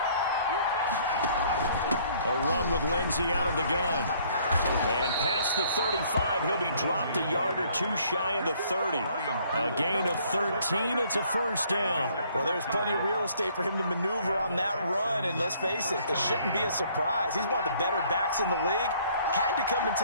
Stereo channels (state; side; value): inverted; both; correlation -0.61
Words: A run with Lindsay out of the gun. And past the 35, he'll be dropped a yard or 2 shy of the 30. A gain of 13, it's a 1st down. Well, there's plenty of real estate for him to maneuver on that run, and let's face it, it shouldn't be a surprise. He's one of the better backs in the league. Had to come